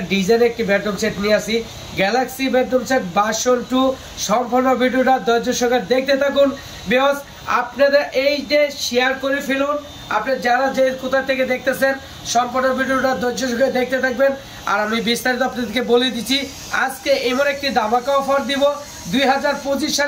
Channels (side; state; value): both; identical; correlation 1.00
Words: ডিজাইন একটি বেডরুম সেট নিয়ে আসি, গ্যালাক্সি বেডরুম সেট ভার্সন 2। সম্পূর্ণ ভিডিওটা ধৈর্য সহকারে দেখতে থাকুন। বিকজ আপনাদের এই যে শেয়ার করে ফেলুন, আপনি যারা যে কোথা থেকে দেখতেছেন সম্পূর্ণ ভিডিওটা ধৈর্য সহকারে দেখতে থাকবেন। আর আমি বিস্তারিত আপনাদেরকে বলে দিচ্ছি, আজকে এমন একটি ধামাকা অফার দিব 2025